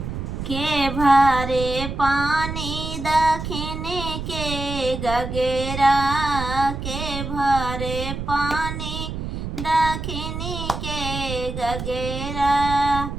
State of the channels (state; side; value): noise; right; rumble, 6 dB below the sound